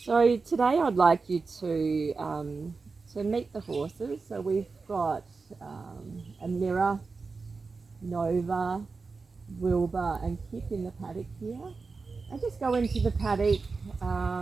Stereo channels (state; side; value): quieter; left; 4.3 dB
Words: So today I'd like you to meet the horses. So we've got a Mirror, Nova, Wilbur and Kip in the paddock here. And just go into the paddock,